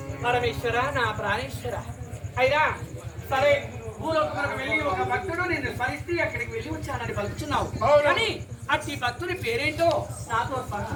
పరమేశ్వర నా ప్రాణేశ్వర అయినా సరే భూలోకములకు వెళ్ళి ఒక భక్తుడు నిన్ను స్మరిస్తే అక్కడికి వెళ్ళి వచ్చానని పలుకుతున్నావు. కానీ అట్టి భక్తుని పేరేంటో నాతో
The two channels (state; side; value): identical; both; correlation 1.00